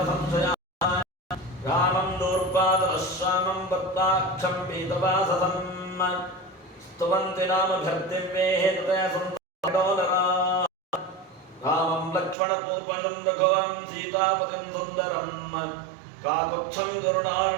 रामं दूर्वादरः श्यामं वत्ताक्षं पीतवाससं स्तुवन्ति नामभ्यर्दिव्यैः तते सन्तोदरा रामं लक्ष्मणपूर्वजं रघुवं सीतापतिं सुन्दरं काकुत्स्थं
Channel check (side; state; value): left; drops out; at 12.4 s